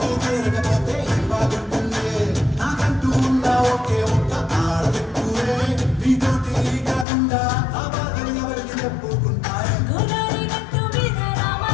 తీరకపోతే బాగుంటుంది. నాకంటూ ఉన్న ఒకే ఒక్క ఆడబెట్టువే, నీతోటి కాకుండా ఆ బాధలు ఎవరికి చెప్పుకుంటారే. గోదావరి గట్టు మీద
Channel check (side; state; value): right; drops out; at 7.1 s